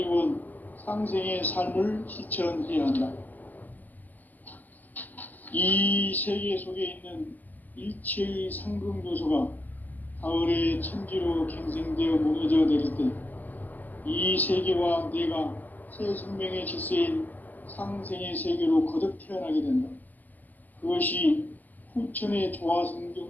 상생의 삶을 실천해야 한다. 이 세계 속에 있는 일체의 상승요소가 가을의 천지로 갱생되어 무너져 내릴 때 이 세계와 내가 새 생명의 질서인 상생의 세계로 거듭 태어나게 된다. 그것이 후천의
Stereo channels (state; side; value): late; right; 0.083 ms